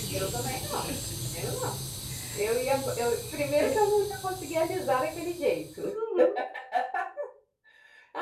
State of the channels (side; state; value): both; identical; correlation 1.00